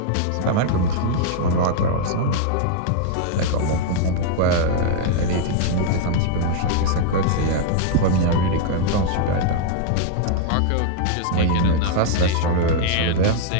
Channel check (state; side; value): different; both; correlation -0.01